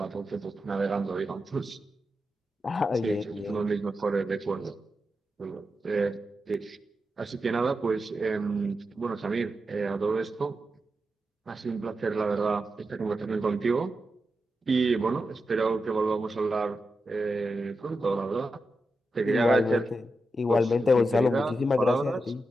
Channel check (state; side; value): normal; both; correlation 0.89